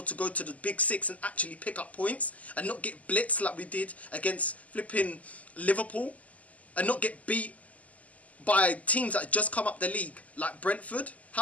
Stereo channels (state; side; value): late; right; 0.072 ms